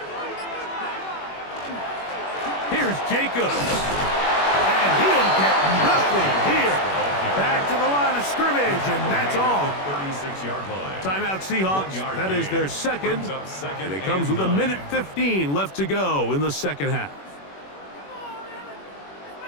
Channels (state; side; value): late; right; 21 ms